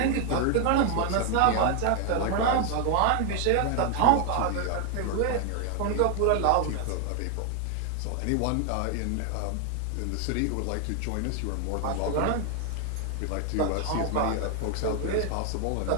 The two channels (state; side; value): different; both; correlation 0.00